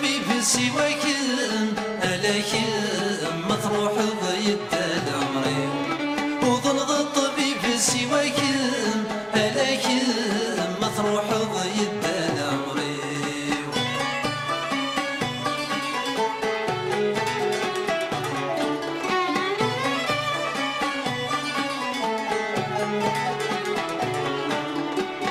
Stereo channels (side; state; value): both; identical; correlation 1.00